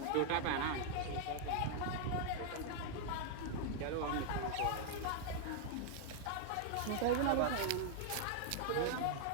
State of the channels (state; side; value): different; both; correlation 0.00